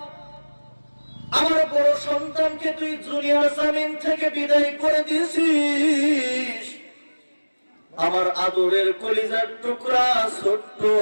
আমার বড় সন্তানকে তুই দুনিয়ার জমিন থেকে বিদায় করে দিয়েছিস। আমার আদরের কলিজার টুকরা ছোট্ট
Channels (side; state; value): both; inverted; correlation -1.00